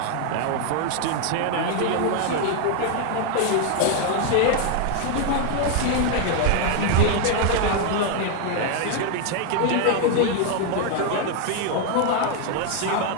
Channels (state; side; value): different; both; correlation 0.00